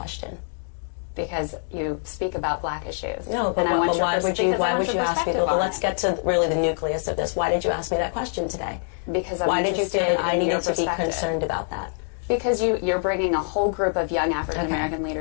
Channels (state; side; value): silent; right; 58 dB below the other